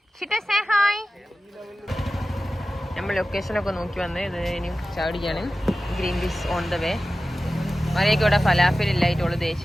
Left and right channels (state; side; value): normal; both; correlation 0.95